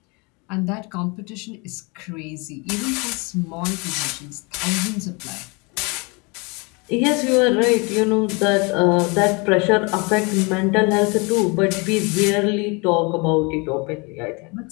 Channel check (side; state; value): right; quieter; 29.4 dB